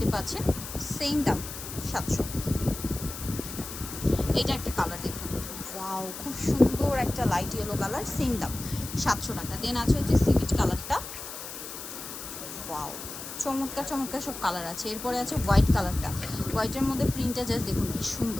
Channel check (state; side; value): noise; left; hiss, 10 dB below the sound